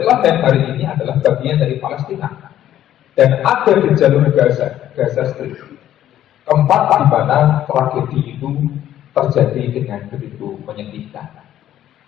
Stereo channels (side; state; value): right; quieter; 11.9 dB